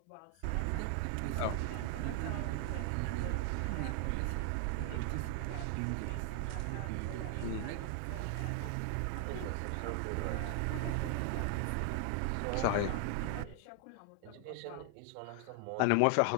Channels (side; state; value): both; different; correlation 0.00